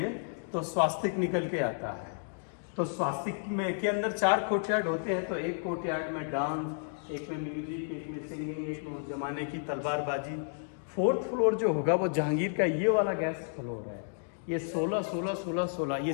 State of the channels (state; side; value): silent; right; digital silence